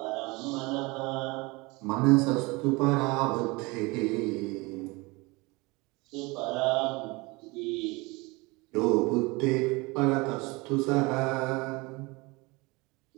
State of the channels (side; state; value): left; quieter; 24.9 dB